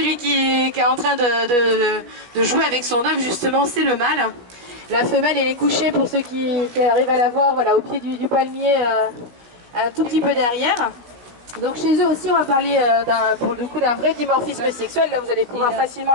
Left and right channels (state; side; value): late; left; 17 ms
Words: qui est en train de jouer avec son œuf, justement, c'est le mâle. La femelle, elle est couchée, pour ceux qui arrivent à la voir, voilà, au pied du palmier, un tout petit peu derrière. Donc chez eux aussi, on va parler pour le coup d'un vrai dimorphisme sexuel. Là, vous allez pouvoir facilement